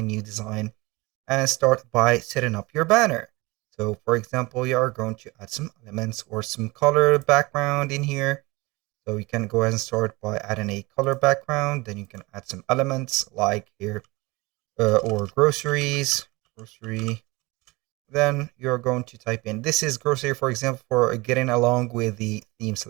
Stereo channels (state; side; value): quieter; left; 23.4 dB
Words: new design and start by setting up your banner. So for example, you are going to add some elements or some color background in here. So you can go ahead and start by adding a color background. Then you can add some elements like here or groceries, grocery. Then you're going to type in, this is grocery, for example, for getting along with the theme